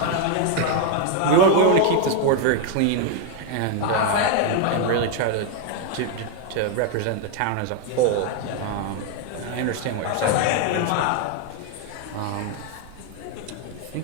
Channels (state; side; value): different; both; correlation 0.01